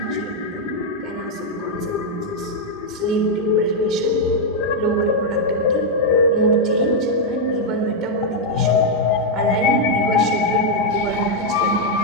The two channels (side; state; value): both; normal; correlation -0.02